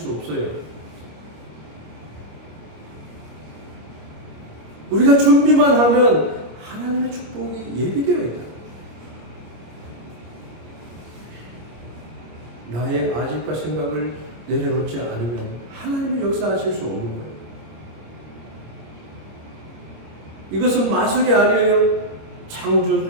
없어요. 우리가 준비만 하면 하나님의 축복이 예비되어 있다. 나의 아집과 생각을 내려놓지 않으면 하나님의 역사하실 수 없는 거예요. 이것은 마술이 아니에요.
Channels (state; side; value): late; left; 25 ms